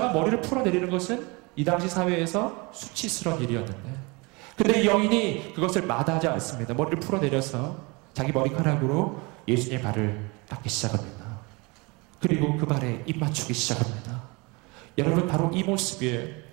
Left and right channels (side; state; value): left; quieter; 27.2 dB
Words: 머리를 풀어내리는 것은 이 당시 사회에서 수치스러운 일이었는데 근데 이 여인이 그것을 마다하지 않습니다. 머리를 풀어내려서 자기 머리카락으로 예수님의 발을 닦기 시작합니다. 그리고 그 발에 입 맞추기 시작합니다. 여러분 바로 이 모습이에요.